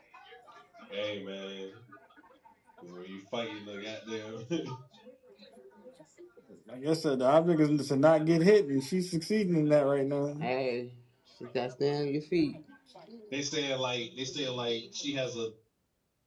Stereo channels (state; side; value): identical; both; correlation 1.00